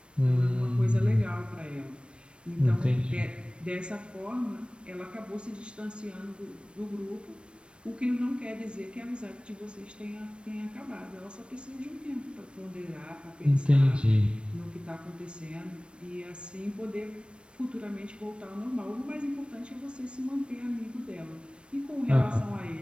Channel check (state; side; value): late; left; 0.058 ms